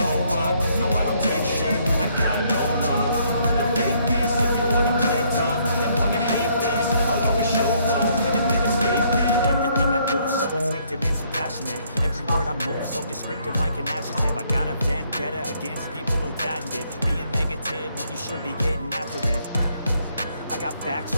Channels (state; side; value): inverted; both; correlation -0.68